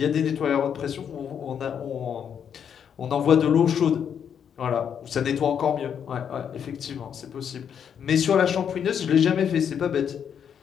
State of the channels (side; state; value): right; quieter; 8.0 dB